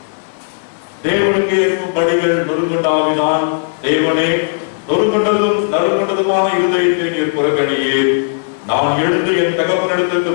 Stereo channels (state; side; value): silent; right; digital silence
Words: தேவனுக்கு ஏற்கும் படிகள் நொறுங்குண்டாவினால் தேவனே நொறுங்குண்டதும் நறுங்குண்டதுமான இருதயத்தை நீர் புறக்கணியே. நான் எழுந்து என் தகப்பனிடத்திற்கு